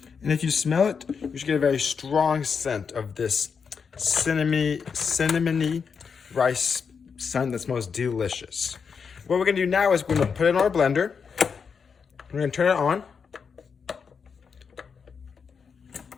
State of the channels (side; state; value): right; quieter; 6.0 dB